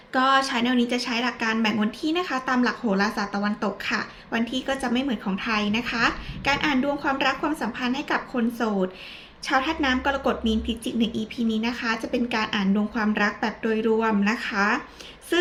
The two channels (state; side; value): identical; both; correlation 1.00